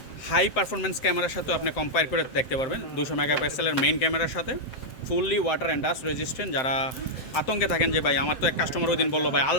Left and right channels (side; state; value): right; late; 7.7 ms